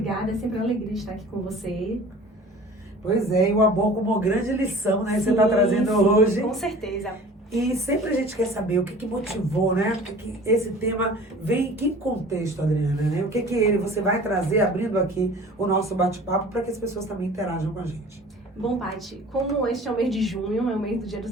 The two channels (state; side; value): normal; both; correlation 0.44